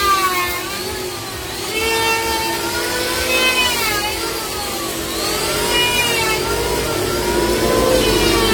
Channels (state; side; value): identical; both; correlation 1.00